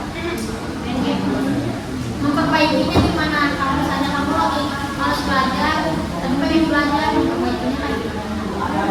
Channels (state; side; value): identical; both; correlation 1.00